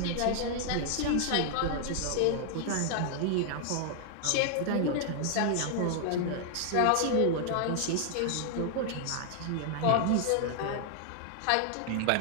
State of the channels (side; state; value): both; different; correlation -0.01